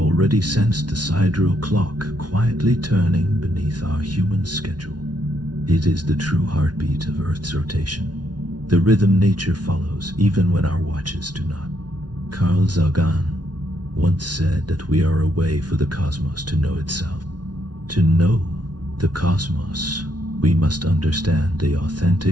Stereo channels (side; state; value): left; late; 0.69 ms